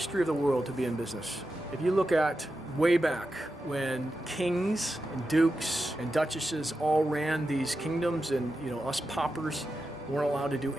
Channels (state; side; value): normal; both; correlation 0.90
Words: of the world to be in business. If you look at way back when kings and dukes and duchesses all ran these kingdoms, and us paupers weren't allowed to do